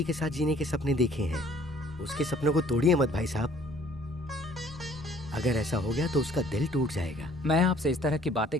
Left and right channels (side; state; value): both; normal; correlation 0.57